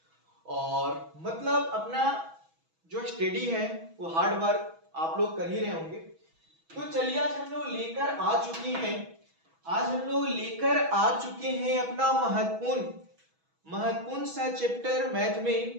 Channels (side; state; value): left; late; 6.1 ms